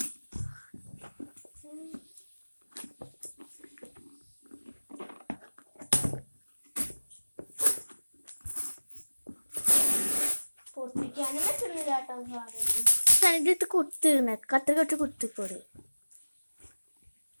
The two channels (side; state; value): both; inverted; correlation -1.00